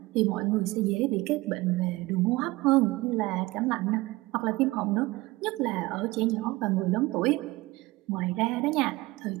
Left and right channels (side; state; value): left; quieter; 20.6 dB